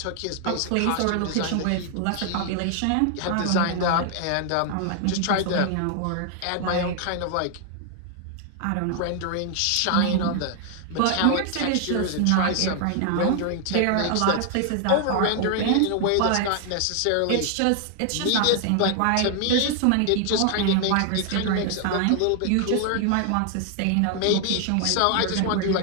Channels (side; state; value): both; different; correlation 0.00